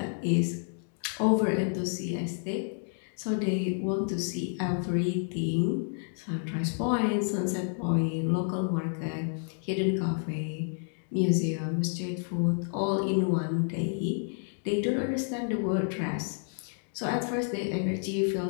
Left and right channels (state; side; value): silent; right; 58 dB below the other